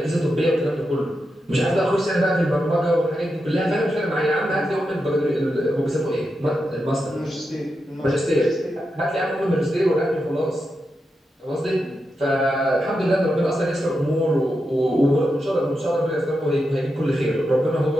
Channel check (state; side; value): normal; both; correlation 0.87